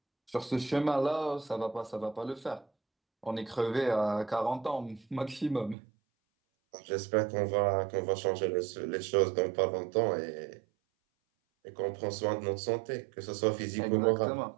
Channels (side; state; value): left; drops out; at 5.8 s